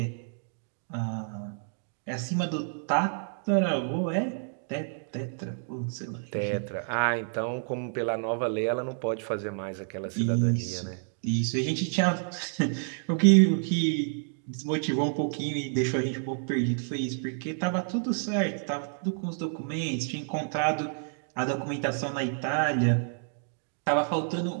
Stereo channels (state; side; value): silent; left; digital silence